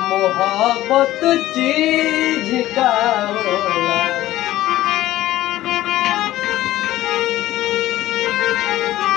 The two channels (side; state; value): right; quieter; 15.2 dB